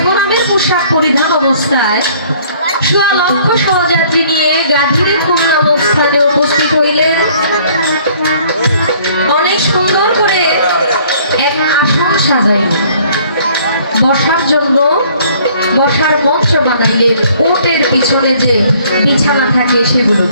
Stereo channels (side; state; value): both; inverted; correlation -0.58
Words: পোশাক পরিধান অবস্থায় সোয়া লক্ষ সহযাত্রী নিয়ে গাজীরে খুলনা স্থানে উপস্থিত হইলেন। অনেক সুন্দর করে এক আসন সাজাইলেন, বসার জন্য বসার মঞ্চ বানাইলেন। উটের পিছনে যে বিছানা থাকে